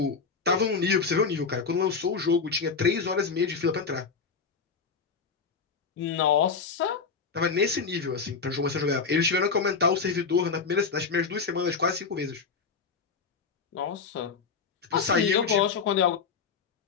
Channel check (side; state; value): right; quieter; 5.3 dB